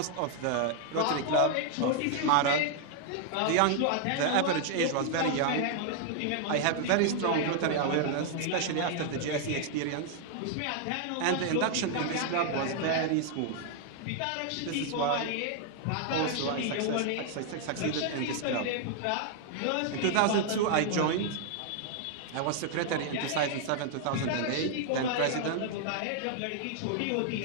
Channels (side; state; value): both; different; correlation 0.00